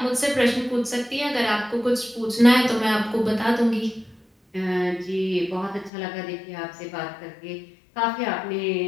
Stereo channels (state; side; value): drops out; right; at 5.9 s